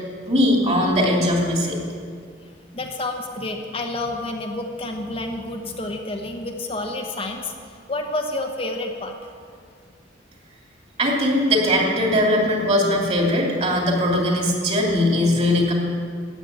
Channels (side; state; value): both; normal; correlation 0.39